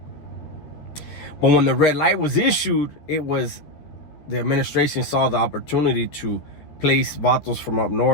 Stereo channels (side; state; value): right; late; 13 ms